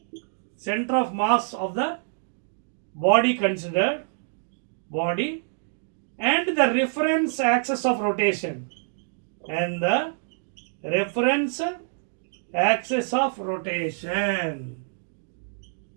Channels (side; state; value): left; silent; digital silence